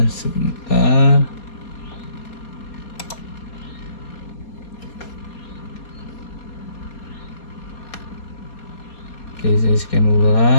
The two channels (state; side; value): late; right; 4.2 ms